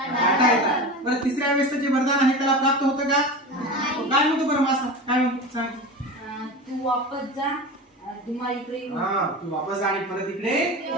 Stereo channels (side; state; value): both; normal; correlation 0.29